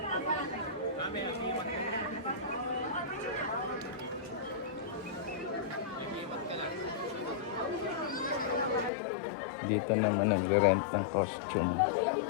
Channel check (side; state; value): right; drops out; at 8.9 s